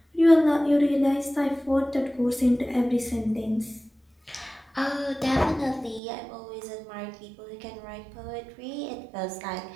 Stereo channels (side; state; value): left; drops out; at 6.0 s